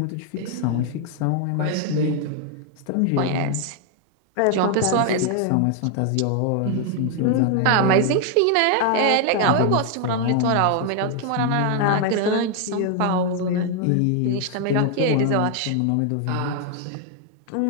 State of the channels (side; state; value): both; different; correlation 0.00